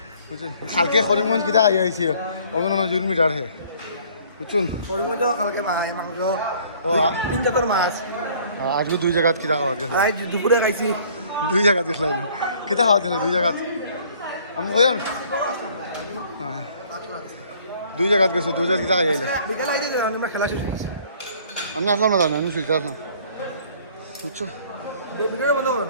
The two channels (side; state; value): both; inverted; correlation -0.56